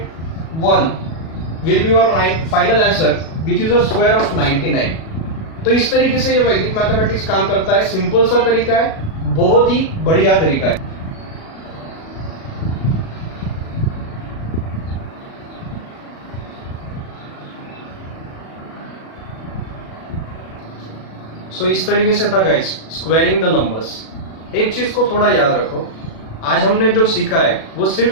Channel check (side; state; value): right; late; 37 ms